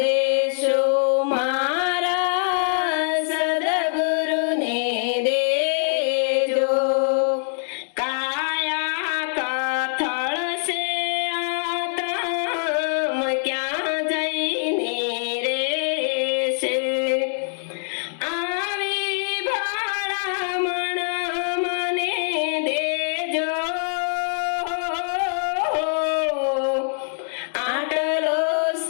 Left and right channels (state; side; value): silent; right; digital silence